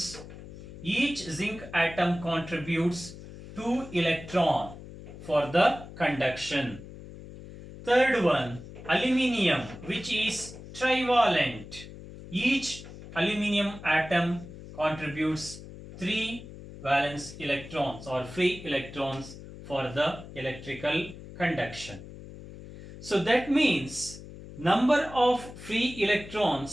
each zinc atom contributes 2 electrons for the conduction. Third one, aluminium, which is trivalent. Each aluminium atom contributes 3 valence electrons or free electrons for the electrical conduction. So that means number of free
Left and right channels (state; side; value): noise; left; hum, 14 dB below the sound